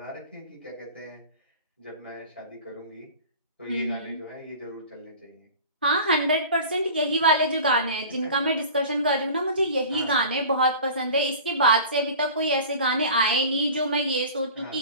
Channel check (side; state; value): both; inverted; correlation -0.40